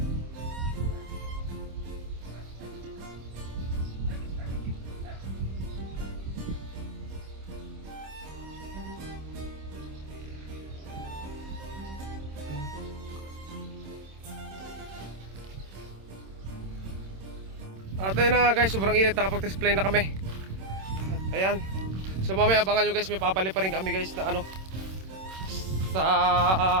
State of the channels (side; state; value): left; late; 26 ms